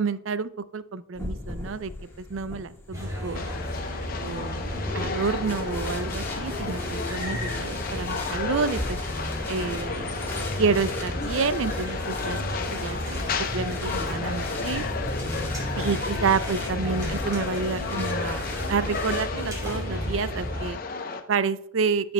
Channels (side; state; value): both; normal; correlation 0.13